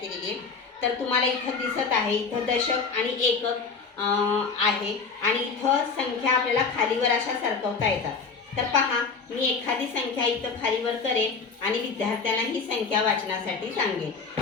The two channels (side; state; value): right; quieter; 5.0 dB